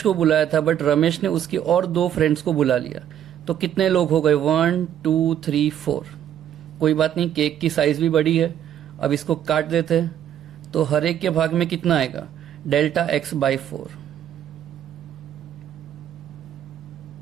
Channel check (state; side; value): quieter; left; 10.4 dB